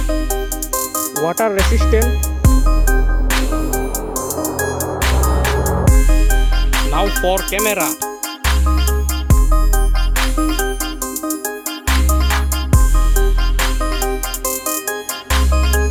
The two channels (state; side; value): identical; both; correlation 1.00